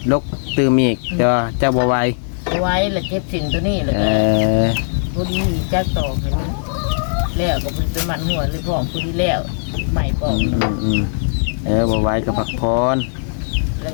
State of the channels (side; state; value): right; silent; digital silence